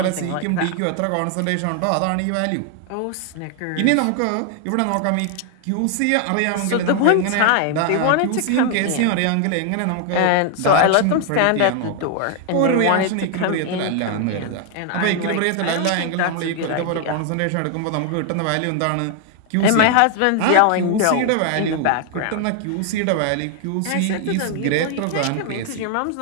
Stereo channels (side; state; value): both; different; correlation 0.00